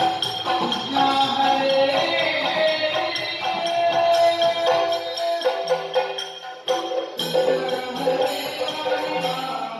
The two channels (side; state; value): both; identical; correlation 1.00